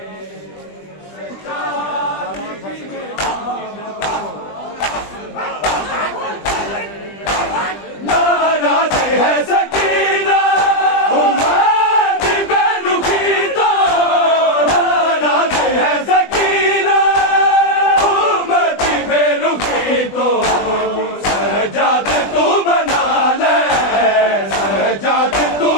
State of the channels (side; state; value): right; late; 20 ms